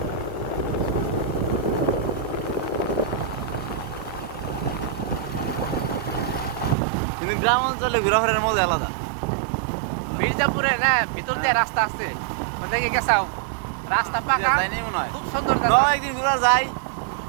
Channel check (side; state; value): left; drops out; at 6.8 s